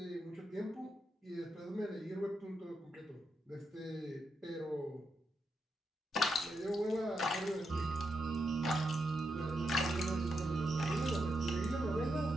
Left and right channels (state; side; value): normal; both; correlation 0.84